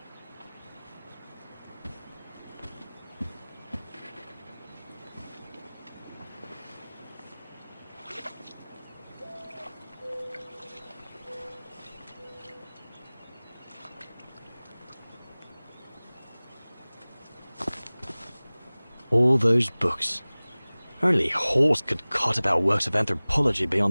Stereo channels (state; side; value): inverted; both; correlation -1.00